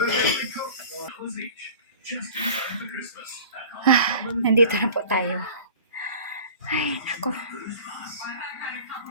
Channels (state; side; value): inverted; both; correlation -0.41